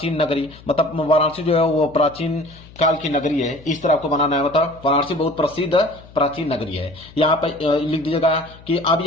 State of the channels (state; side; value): noise; left; hum, 21 dB below the sound